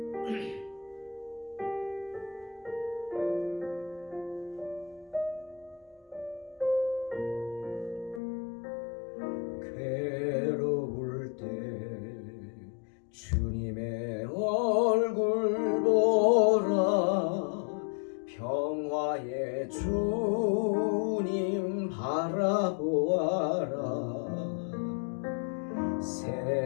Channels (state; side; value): drops out; right; at 8.2 s